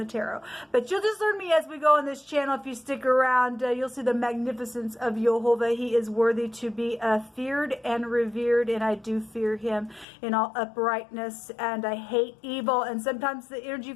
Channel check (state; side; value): drops out; right; at 10.1 s